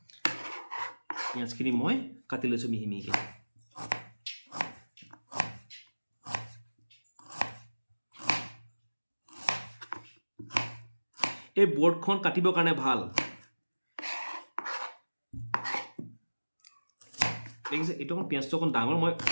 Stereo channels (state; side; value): inverted; both; correlation -1.00